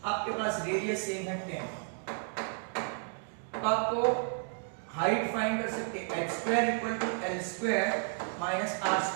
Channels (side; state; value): left; silent; 56 dB below the other